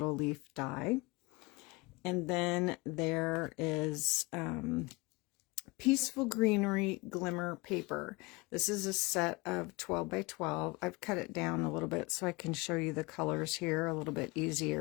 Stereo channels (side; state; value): right; quieter; 25.0 dB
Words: leaf die. And then there is Peaceful Greenery Glimmer Paper. This is a set of 12 by 12. I've cut it down a little bit so I can show you the colors here a little bit